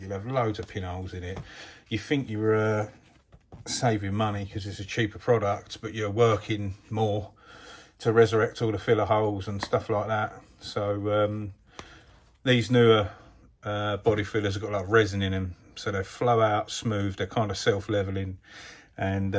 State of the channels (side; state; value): both; identical; correlation 1.00